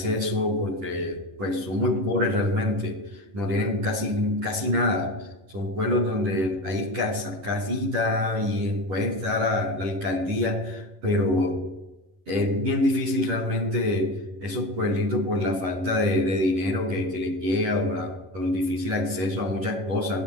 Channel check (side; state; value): left; late; 11 ms